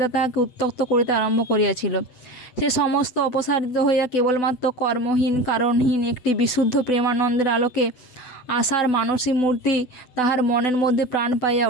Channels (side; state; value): right; late; 8.0 ms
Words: তাহাকে উত্ত্যক্ত করিতে আরম্ভ করিয়াছিল। সে সমস্ত অপসারিত হইয়া কেবলমাত্র কর্মহীন কারণহীন একটি বিশুদ্ধ প্রেমানন্দের আলোকে আশার মানসী মূর্তি তাহার মনের মধ্যে প্রাণ পাইয়া